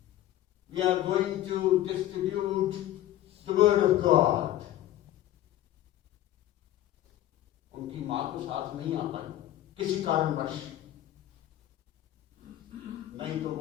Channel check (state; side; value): quieter; right; 13.5 dB